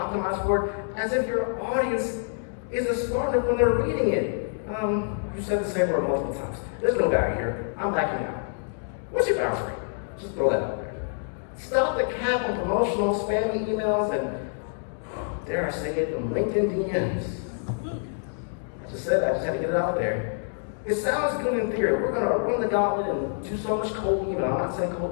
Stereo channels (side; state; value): right; silent; digital silence